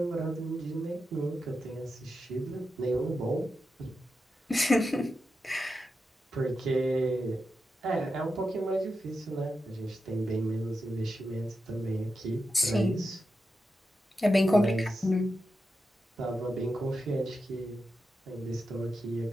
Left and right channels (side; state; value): both; normal; correlation 0.89